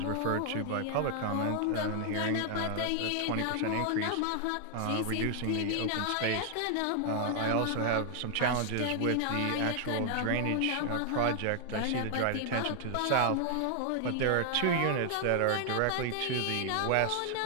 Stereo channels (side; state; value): both; different; correlation 0.00